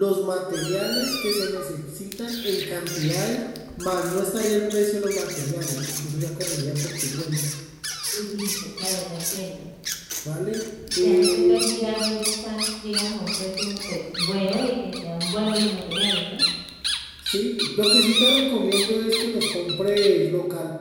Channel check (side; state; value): both; identical; correlation 1.00